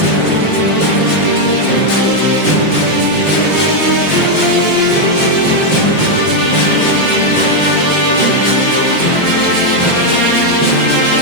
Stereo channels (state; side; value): late; right; 5.5 ms